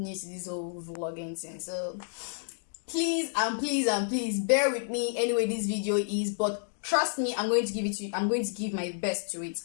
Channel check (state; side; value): silent; right; digital silence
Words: to this whole vlogging thing. So, please bear with me. Anyway, this video is, but trust me, I'm going to give it to you. I'm going to give my best to it.